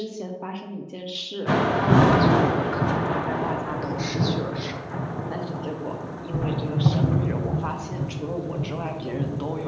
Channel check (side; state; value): both; identical; correlation 1.00